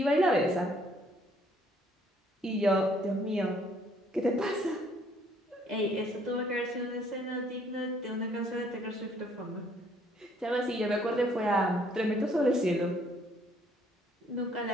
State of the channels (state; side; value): normal; both; correlation 0.64